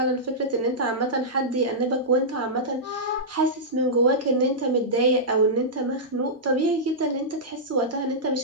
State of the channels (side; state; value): both; normal; correlation -0.13